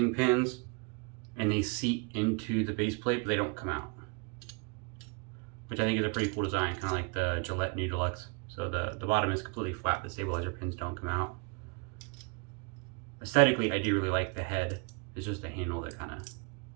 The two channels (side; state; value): left; quieter; 33.7 dB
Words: pins, and they seat into the base plate, but they don't come out, which I think is a pretty cool design, kind of like the Gillette New Deluxe. So the bottom is completely flat, the stabilizer pins don't come out. Aesthetically, I do really like the head. It's just the handle that kind of...